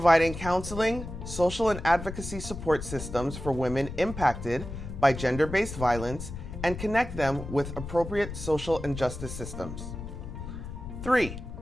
counseling, social and advocacy support systems for women impacted by gender-based violence and connect them with appropriate social and justice systems. 3.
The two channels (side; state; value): left; noise; rumble, 9 dB below the sound